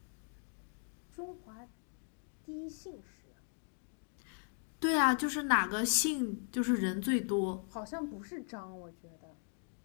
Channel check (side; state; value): right; silent; 52 dB below the other